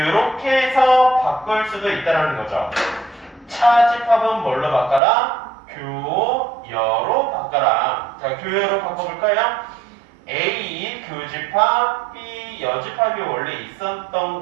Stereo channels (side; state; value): left; drops out; at 5.0 s